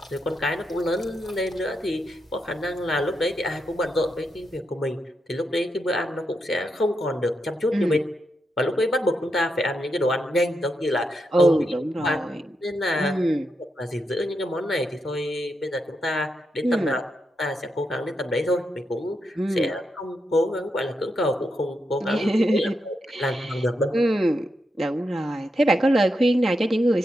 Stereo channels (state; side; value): normal; both; correlation 0.84